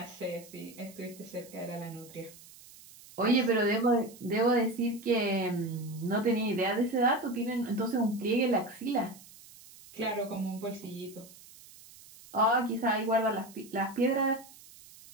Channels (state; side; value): noise; right; hiss, 21 dB below the sound